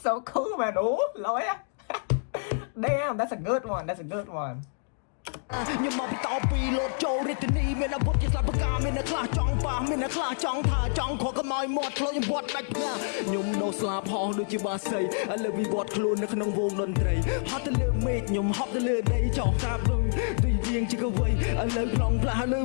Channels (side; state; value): right; silent; digital silence